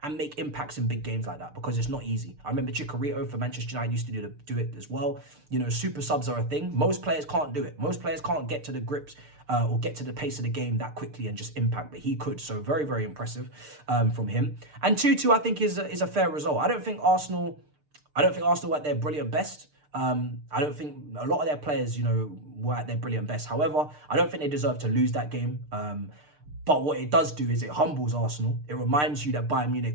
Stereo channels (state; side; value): late; left; 6.7 ms